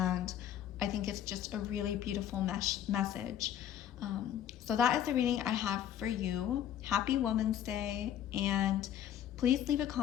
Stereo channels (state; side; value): quieter; right; 10.5 dB